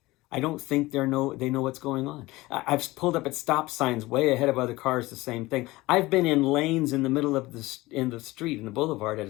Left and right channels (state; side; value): quieter; right; 19.9 dB